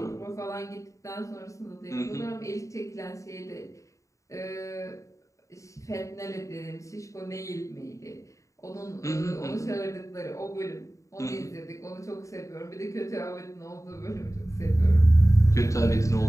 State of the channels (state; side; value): late; right; 0.15 ms